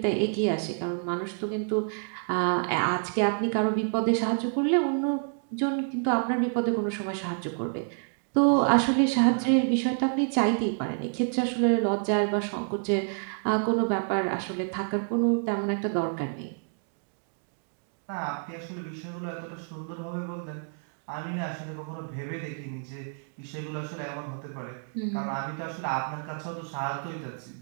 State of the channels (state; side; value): silent; left; 59 dB below the other